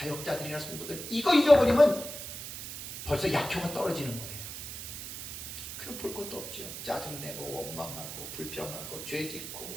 성도들 이거 잊어버리면 벌써 약효가 떨어지는 거예요. 그럼 볼 것도 없죠. 짜증내고 원망하고 불평하고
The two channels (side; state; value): right; noise; hiss, 8 dB below the sound